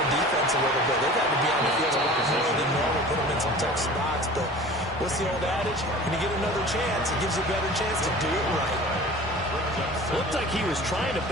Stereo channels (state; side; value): normal; both; correlation 0.41